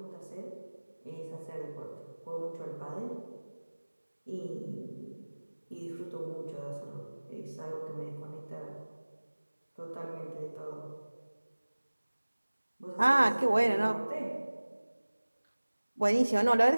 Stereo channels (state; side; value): inverted; both; correlation -1.00